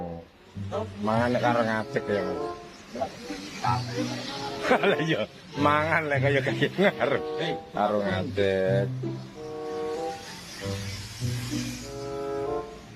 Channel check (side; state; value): both; identical; correlation 1.00